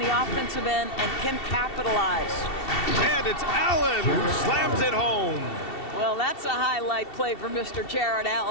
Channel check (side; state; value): right; late; 2.7 ms